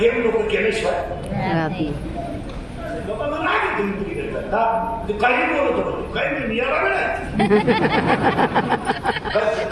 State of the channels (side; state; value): both; identical; correlation 1.00